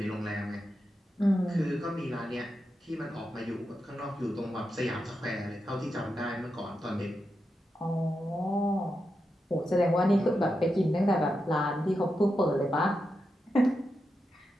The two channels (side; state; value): both; normal; correlation 0.87